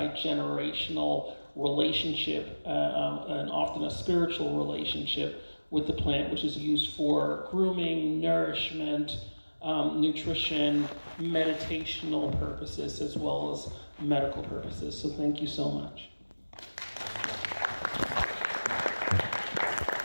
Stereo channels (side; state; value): both; inverted; correlation -1.00